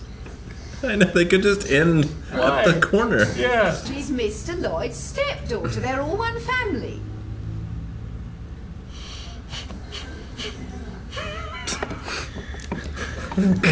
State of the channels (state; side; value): identical; both; correlation 1.00